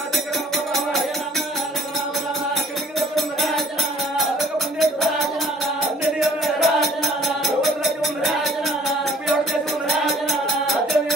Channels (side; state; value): both; normal; correlation 0.54